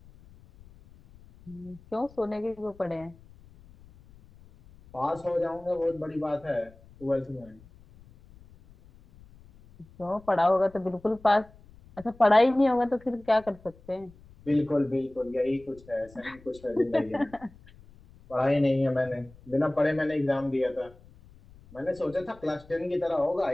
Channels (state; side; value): noise; left; rumble, 24 dB below the sound